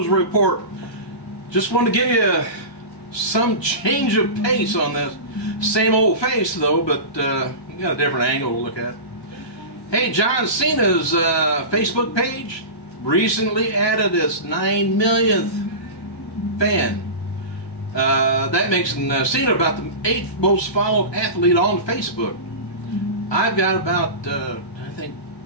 report. Just wanted to give you some change of pace on this. Same old face though, but you got a different angle to look at. Hey, John Cena's Facebook page recently added its 9 millionth fan. That makes Cena about the 8th most followed athlete on Facebook. I've got about, I think,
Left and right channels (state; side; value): late; right; 1.2 ms